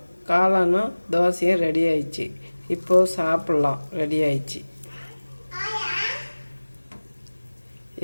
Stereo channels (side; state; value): both; inverted; correlation -1.00